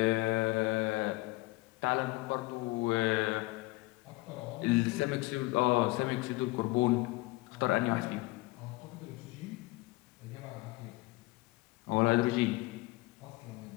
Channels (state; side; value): quieter; right; 21.8 dB